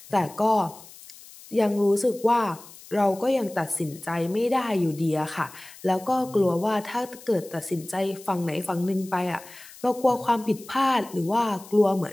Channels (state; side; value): noise; left; hiss, 19 dB below the sound